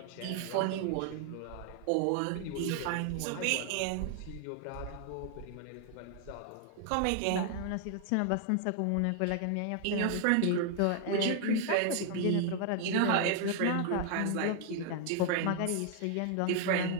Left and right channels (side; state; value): both; different; correlation 0.00